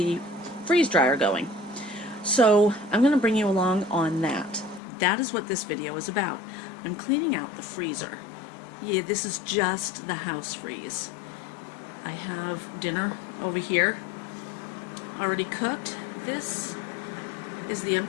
freeze dryer going. So I'm going to bring you along on that. That is what this video is about. I'm cleaning out the freezer. Yeah, this is just the house freeze. I have dinner over here already cooked. This is the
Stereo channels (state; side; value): drops out; right; at 4.8 s